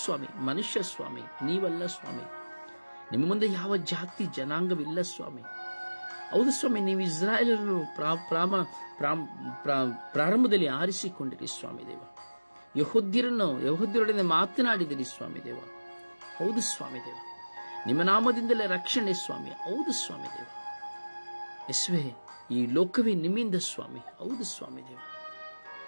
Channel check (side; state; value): both; inverted; correlation -1.00